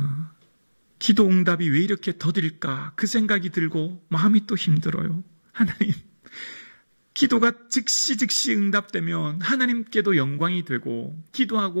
기도 응답이 왜 이렇게 더딜까? 그 생각이 들고 마음이 또 힘들어요. 하나님, 기도가 즉시 응답되면 하나님께도 영광이 되고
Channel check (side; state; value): both; inverted; correlation -1.00